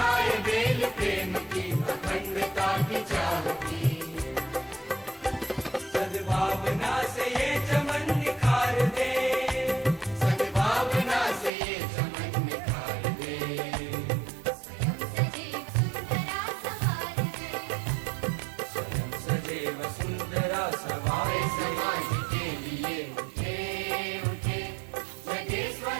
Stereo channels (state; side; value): drops out; left; at 11.5 s